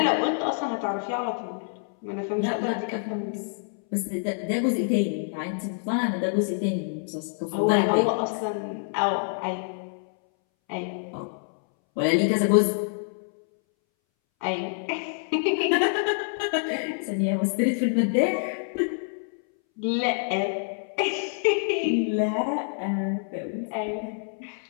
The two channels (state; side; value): silent; right; 60 dB below the other